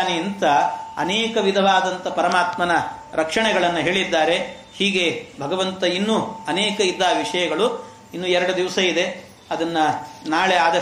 ಅಂತ ಅನೇಕ ವಿಧವಾದಂಥ ಪರಮಾತ್ಮನ ರಕ್ಷಣೆಗಳನ್ನು ಹೇಳಿದ್ದಾರೆ. ಹೀಗೆ ಭಗವಂತ ಇನ್ನೂ ಅನೇಕ ಇದ್ದ ವಿಷಯಗಳು. ಇನ್ನು 2 ದಿವಸ ಇದೆ, ಅದನ್ನ ನಾಳೆ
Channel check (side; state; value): both; identical; correlation 1.00